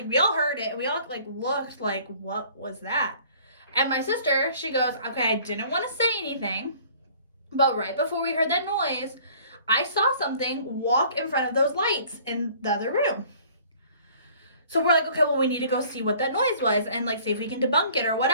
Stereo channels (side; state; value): both; inverted; correlation -0.53